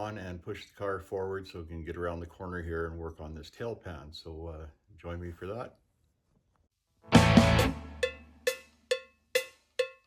and push the car forward so we can get around the corner here and work on this tail pan. So join me for that.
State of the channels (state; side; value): identical; both; correlation 1.00